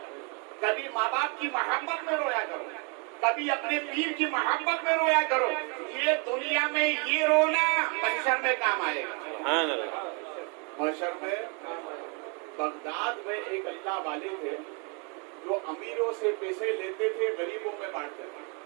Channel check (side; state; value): left; quieter; 33.7 dB